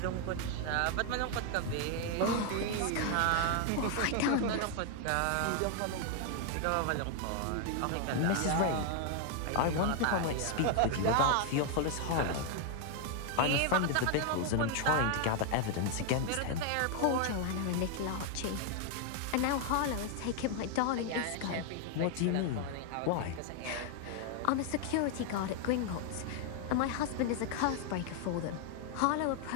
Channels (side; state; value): both; different; correlation 0.00